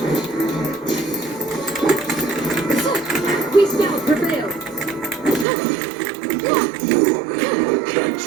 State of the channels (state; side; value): drops out; left; at 5.5 s